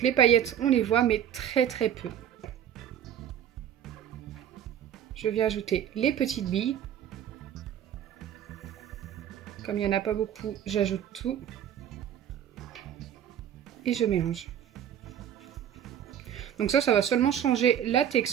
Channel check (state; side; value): quieter; left; 9.8 dB